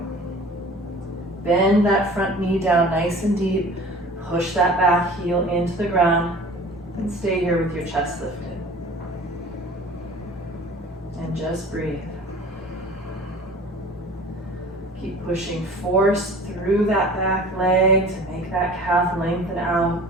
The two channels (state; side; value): normal; both; correlation 0.43